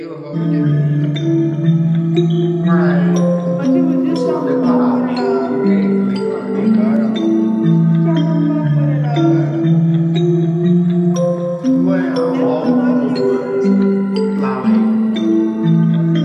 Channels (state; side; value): identical; both; correlation 1.00